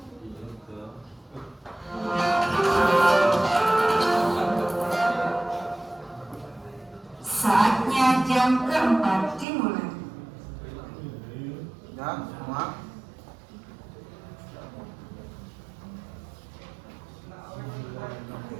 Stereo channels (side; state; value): left; drops out; at 9.5 s